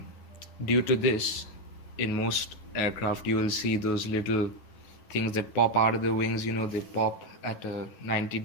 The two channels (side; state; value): right; late; 10 ms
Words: due to this, in most aircraft, you will see those little things that pop out of the wings. They pop at a